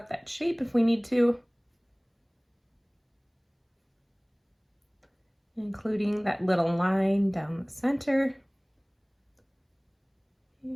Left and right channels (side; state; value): both; identical; correlation 1.00